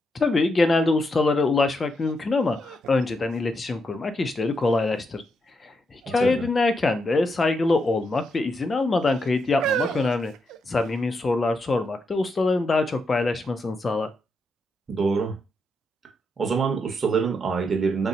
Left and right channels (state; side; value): normal; both; correlation 0.82